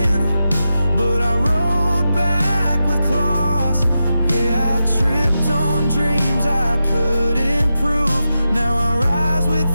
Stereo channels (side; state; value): both; inverted; correlation -0.89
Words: but I rode back with claws. Yeah, I tripped on dreams I couldn't prove. Now I rise